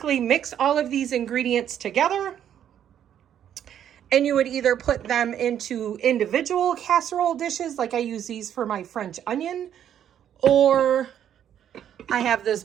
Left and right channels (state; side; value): quieter; left; 9.9 dB